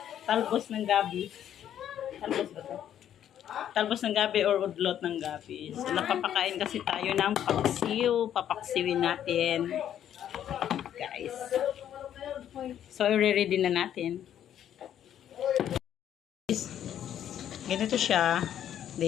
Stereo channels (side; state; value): right; quieter; 10.4 dB